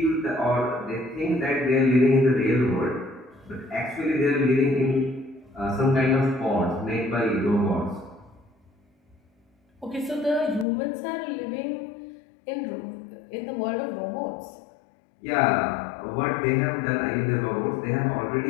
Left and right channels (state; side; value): drops out; right; at 10.7 s